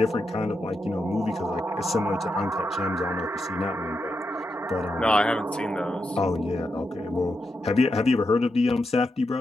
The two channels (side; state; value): both; normal; correlation 0.85